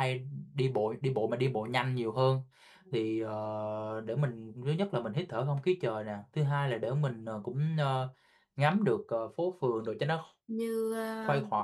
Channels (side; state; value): both; identical; correlation 1.00